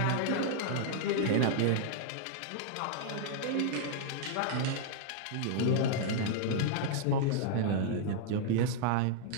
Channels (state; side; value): different; both; correlation 0.00